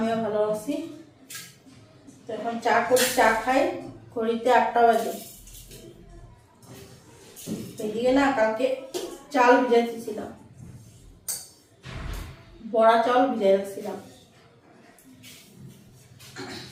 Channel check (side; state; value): both; identical; correlation 1.00